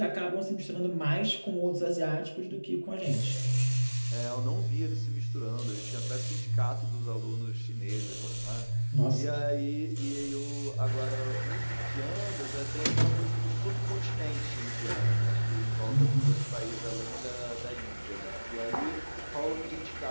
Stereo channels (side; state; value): both; inverted; correlation -1.00